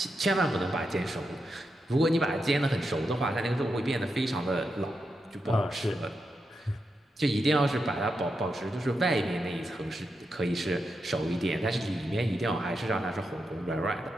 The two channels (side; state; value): both; normal; correlation 0.86